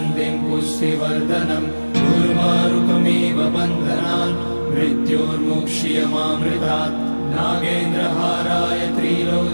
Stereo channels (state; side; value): inverted; both; correlation -1.00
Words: पुष्टिवर्धनम् उर्वारुकमिव बन्धनान् मृत्योर्मुक्ष्यमामृतात्। नागेन्द्रहाराय